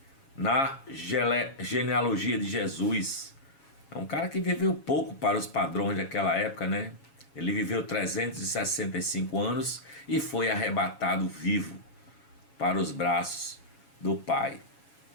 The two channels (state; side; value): late; right; 7.2 ms